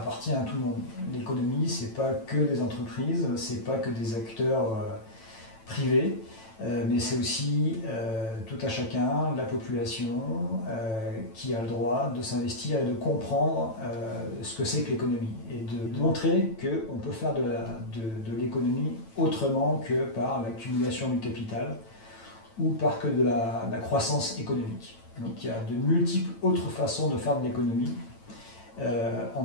à tout le monde. L'économie, c'est pas que des entreprises, c'est pas que des acteurs privés, mais c'est aussi tout à chacun, la population, qui a le droit de s'investir et de comprendre ce que c'est que l'économie et de montrer qu'on peut faire de l'économie autrement que par l'accumulation du capital ou par que de la croissance économique. Donc il y a de multiples autres façons de faire de l'économie, en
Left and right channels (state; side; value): late; right; 9.0 ms